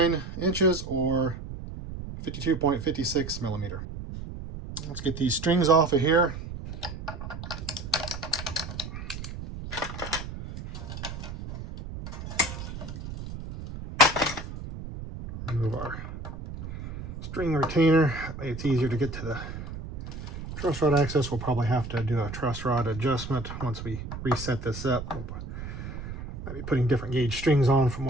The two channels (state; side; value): noise; right; rumble, 9 dB below the sound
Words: inches or 52.56 millimeter. Let's get these strings off of here. Remove our string retainer. It's easier to get to the truss rod access. We'll probably have to do a truss rod adjustment once we reset this up. We'll might be putting different gauge strings on from